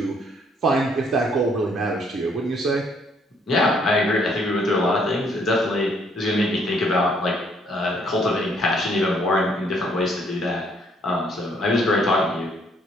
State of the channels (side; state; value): both; normal; correlation 0.66